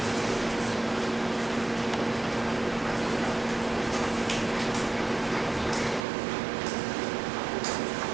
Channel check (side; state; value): left; drops out; at 6.1 s